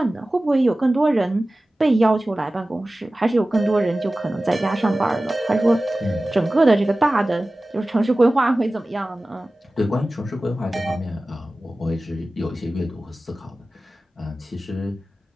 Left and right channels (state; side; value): normal; both; correlation 0.97